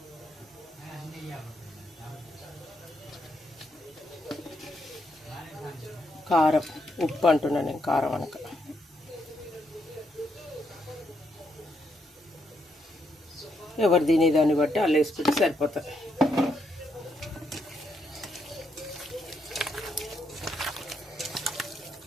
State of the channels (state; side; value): normal; both; correlation 0.77